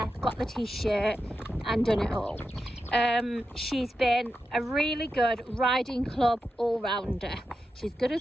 got the t-shirt and done it all. She's been a really good riding club all-rounder. She's good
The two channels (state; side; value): normal; both; correlation 0.89